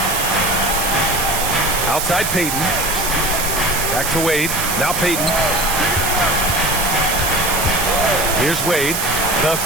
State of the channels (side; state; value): right; noise; hiss, 2 dB below the sound